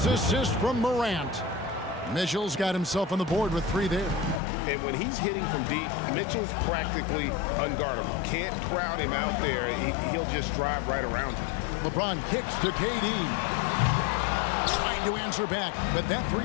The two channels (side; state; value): right; drops out; at 4.4 s